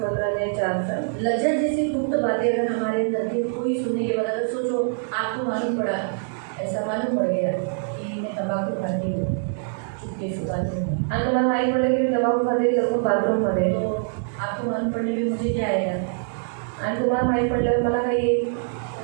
पत्र अध्याय 4 लज्जा जैसी गुप्त बातें अगर हमारे अंदर थी, कोई सुनने के बाद अगर सोचो आपको मालूम पड़ा, ऐसा मालूम पड़ गया कि मैं तंबाकू खाती हूँ चुपके से बाथरूम में, आणि तुम्हाला माहीत पडलं की तंबाखू खाते लपून बाथरूममध्ये तो आपको मालूम पड़ने में मुझे क्या आएगा, आणि तुम्हाला माहीत पडल्यावर मला काही येईल?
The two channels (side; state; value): left; silent; digital silence